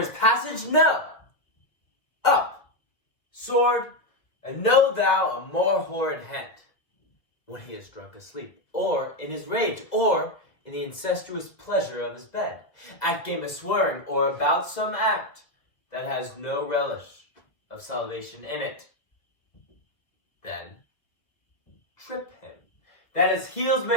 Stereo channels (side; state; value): right; late; 1.9 ms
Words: passage? No! Up, sword, and know thou a more horrid hent, when he is drunk asleep, or in his rage, or in the incestuous pleasure of his bed, at game of swearing, or about some act that has no relish of salvation in it. Then trip him, that his heels